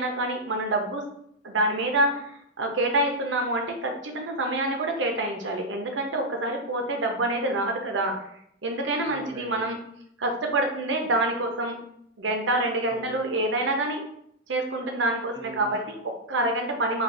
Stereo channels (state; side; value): normal; both; correlation -0.03